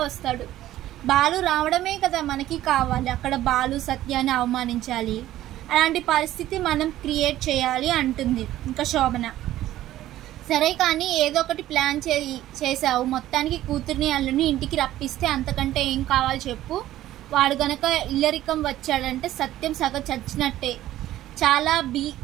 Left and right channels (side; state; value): left; quieter; 14.0 dB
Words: వస్తాడు. బాలు రావడమే కదా మనకి కావాలి. అక్కడ బాలు సత్యాన్ని అవమానించాలి, అలాంటి పరిస్థితి మనం క్రియేట్ చేయాలి అంటుంది ఇంకా శోభన. సరే కానీ ఏదో ఒకటి ప్లాన్ చేసావు, మొత్తానికి కూతుర్ని అల్లుని ఇంటికి రప్పిస్తే అంతకంటే ఏం కావాలి చెప్పు. వాడు గనక ఇల్లరికం వచ్చాడంటే సత్యం సగ చచ్చినట్టే. చాలా